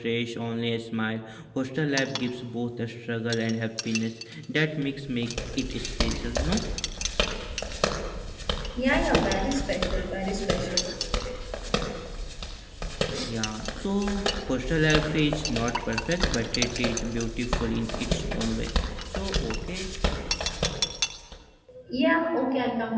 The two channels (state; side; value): identical; both; correlation 1.00